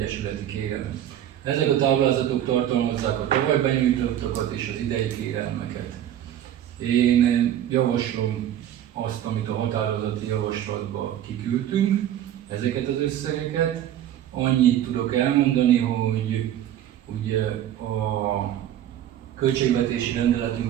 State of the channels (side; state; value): left; quieter; 11.3 dB